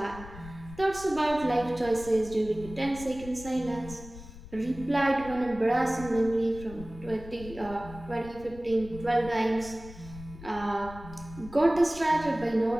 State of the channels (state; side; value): noise; left; rumble, 15 dB below the sound